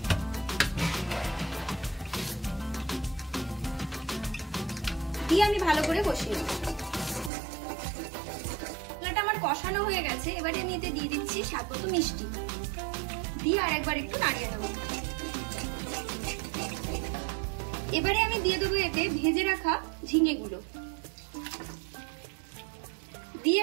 দিয়ে আমি ভালো করে কষিয়ে নেব। মশলাটা আমার কষানো হয়ে গেছে। এবারে আমি এতে দিয়ে দিচ্ছি স্বাদ মতো মিষ্টি, দিয়ে আর একবার একটু নাড়িয়ে নেব। এবারে আমি দিয়ে দেবো এতে ভেজে রাখা ঝিঙেগুলো, দিয়ে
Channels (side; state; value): left; drops out; at 7.3 s